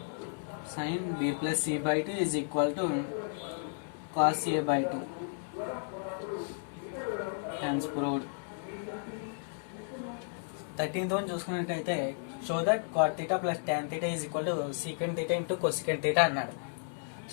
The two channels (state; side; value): silent; right; digital silence